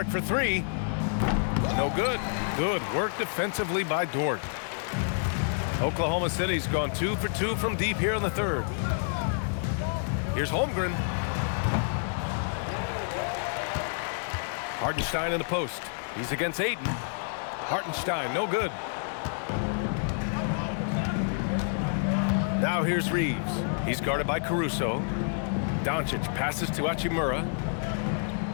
for 3. No good. Good work defensively by Dort. Oklahoma City's gone 2 for 2 from deep here in the third. Here's Holmgren. Hartenstein in the post. He's against Ayton. Hartenstein, no good. Now here's Reaves. He's guarded by Caruso. Doncic passes to Hachimura.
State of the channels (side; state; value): right; silent; digital silence